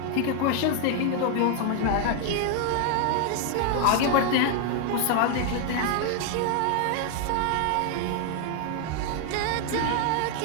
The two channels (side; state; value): both; different; correlation 0.00